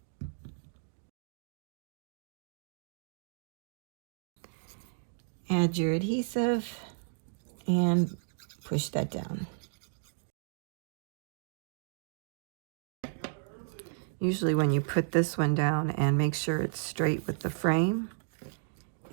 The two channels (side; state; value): left; silent; digital silence